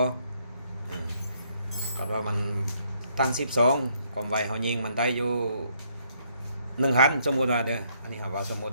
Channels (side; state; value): both; inverted; correlation -0.70